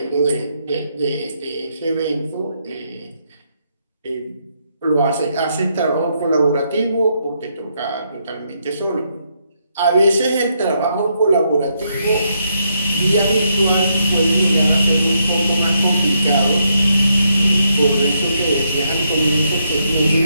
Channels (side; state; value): both; inverted; correlation -0.76